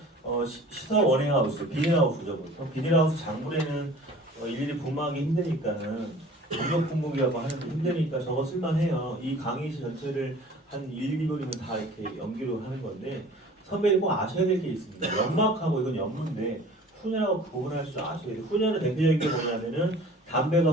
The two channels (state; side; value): normal; both; correlation 0.46